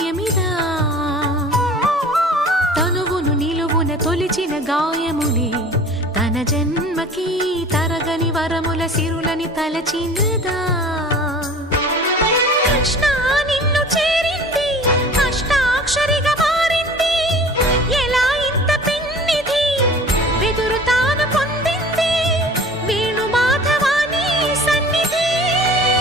తనువును నిలువున తొలిచిన గాయములే తన జన్మకి తరగని వరముల సిరులని తలచినదా కృష్ణ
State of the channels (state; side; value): normal; both; correlation 0.44